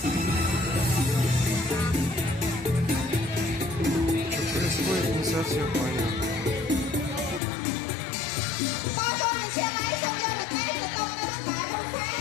Происходит не совсем понятно.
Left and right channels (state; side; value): drops out; right; at 7.4 s